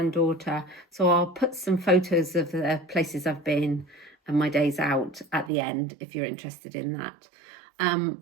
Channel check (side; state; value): left; drops out; at 5.5 s